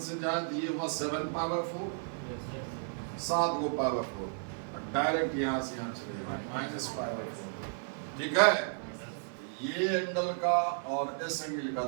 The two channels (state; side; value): silent; left; digital silence